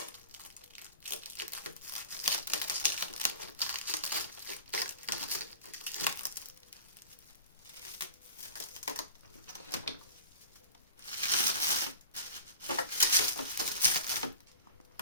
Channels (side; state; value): both; inverted; correlation -0.39